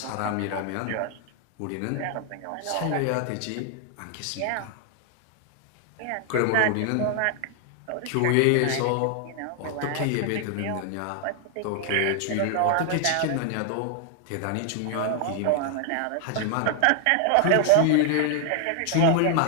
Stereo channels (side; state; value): both; different; correlation 0.00